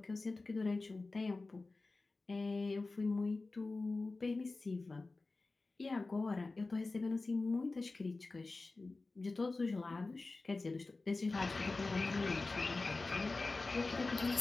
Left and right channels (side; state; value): right; quieter; 3.5 dB